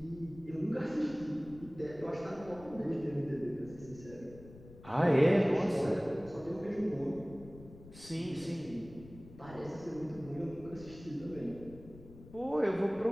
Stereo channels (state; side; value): noise; left; rumble, 18 dB below the sound